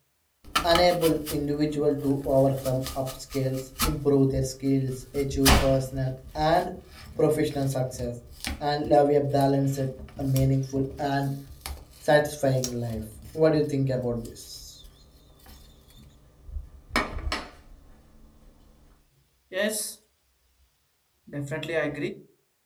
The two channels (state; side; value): identical; both; correlation 1.00